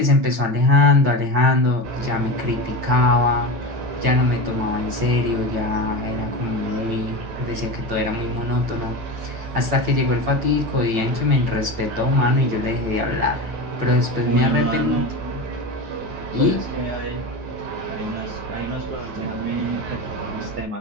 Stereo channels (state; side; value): late; left; 8.9 ms